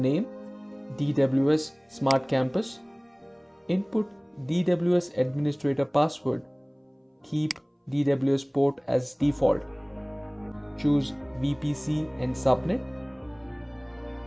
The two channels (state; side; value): identical; both; correlation 1.00